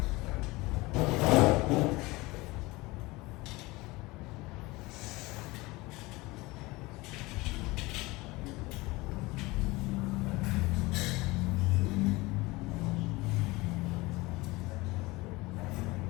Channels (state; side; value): quieter; right; 22.0 dB